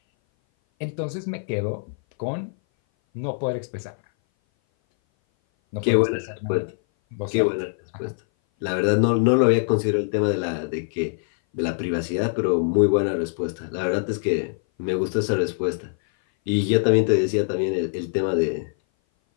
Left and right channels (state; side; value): silent; right; 58 dB below the other